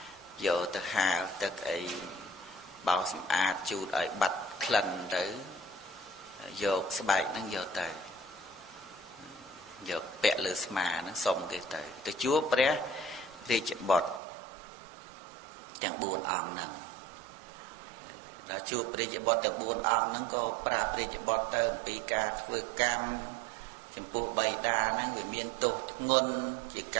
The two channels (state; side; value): drops out; left; at 14.2 s